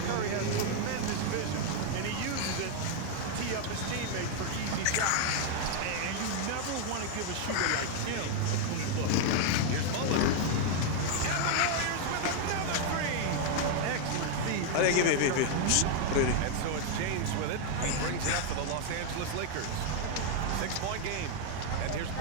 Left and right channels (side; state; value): both; different; correlation 0.00